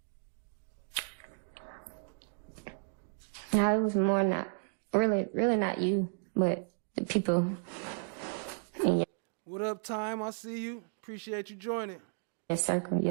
No, it was more not, really not you, but the people in What up, Time? I see you. Appreciate you joining. your circle,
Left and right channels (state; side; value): silent; left; digital silence